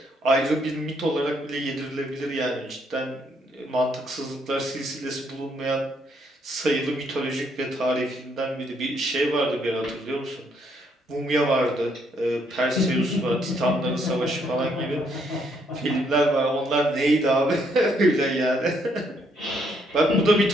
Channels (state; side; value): normal; both; correlation 0.71